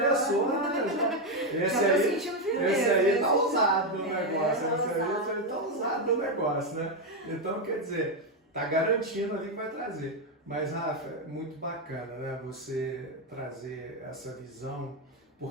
né? Esse aí tá ousado no negócio, esse aí tá ousado no negócio, né? Então, quer dizer, tá garantindo ali que vai trazer. Mas, Rafa, é muito bacana, né? Você trazer essa visão,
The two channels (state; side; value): normal; both; correlation 0.06